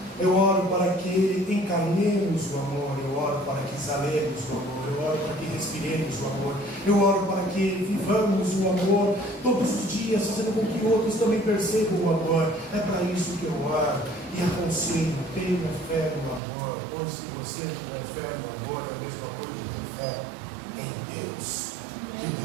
Eu oro para que encarnemos o amor. Eu oro para que exalemos o amor. Eu oro para que respiremos o amor. Eu oro para que vivamos o amor todos os dias, fazendo com que outros também percebam o amor. É para isso que eu oro e aconselho: tenha fé no amor, pois se você tiver fé no amor, é a mesma coisa de ter fé em Deus. Que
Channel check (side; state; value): left; drops out; at 16.4 s